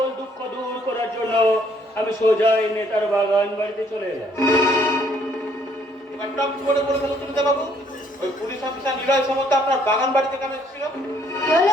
দুঃখ দূর করার জন্য আমি সোজাই নেতার বাগান বাড়িতে চলে এলাম। বাবু, ওই পুলিশ অফিসার নিলয় সামন্ত আপনার বাগান বাড়িতে কেন এসেছিল?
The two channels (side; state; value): both; normal; correlation 0.65